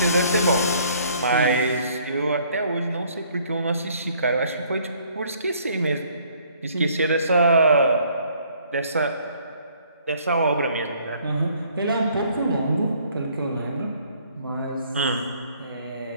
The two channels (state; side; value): inverted; both; correlation -0.62